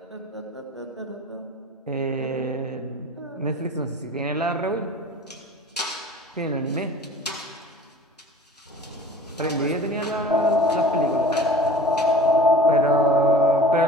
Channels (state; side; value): normal; both; correlation 0.42